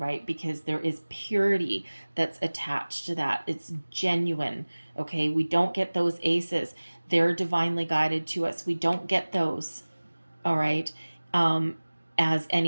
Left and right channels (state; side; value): inverted; both; correlation -1.00